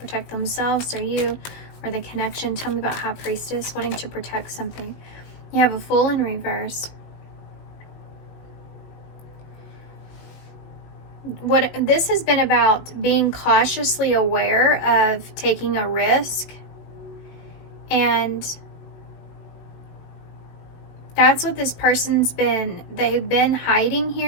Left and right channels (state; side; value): late; right; 19 ms